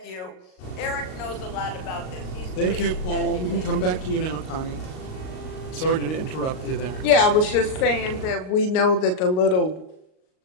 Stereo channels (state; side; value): late; right; 38 ms